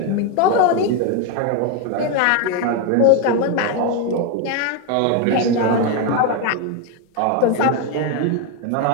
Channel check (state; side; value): different; both; correlation 0.02